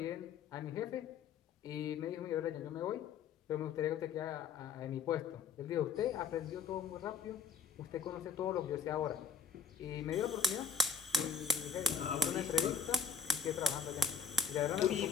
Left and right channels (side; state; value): right; quieter; 5.7 dB